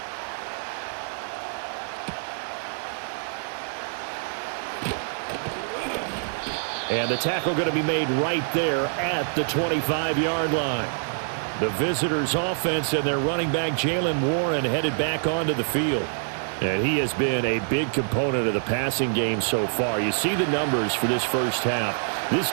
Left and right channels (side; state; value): left; silent; 61 dB below the other